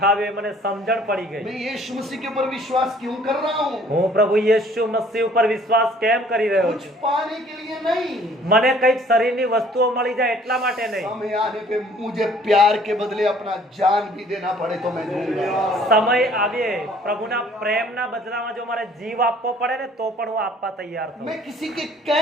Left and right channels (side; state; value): both; normal; correlation 0.56